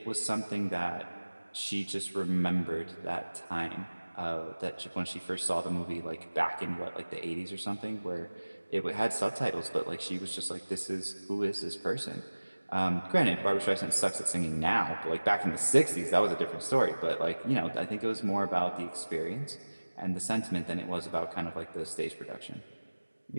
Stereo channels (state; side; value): inverted; both; correlation -1.00